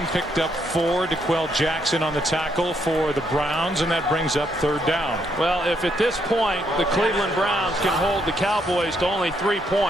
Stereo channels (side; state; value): both; normal; correlation 0.75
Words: picked up 4. DeQuell Jackson on the tackle for the Browns, and that brings up 3rd down. Well, if at this point the Cleveland Browns can hold the Cowboys to only 3